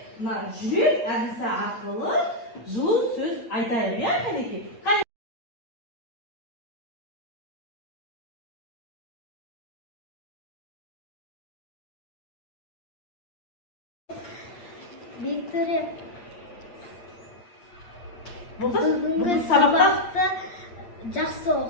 мына жүрек әдісі арқылы жылы сөз айтайық, иә, кәнекей? Виктория, бүгінгі сабақты жақсы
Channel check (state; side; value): late; right; 8.6 ms